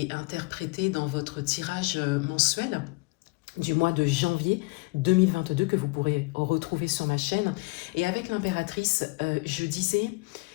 interprétée dans votre tirage mensuel du mois de janvier 2022 que vous pourrez retrouver sur ma chaîne. Et avec l'impératrice, je disais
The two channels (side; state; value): right; quieter; 26.0 dB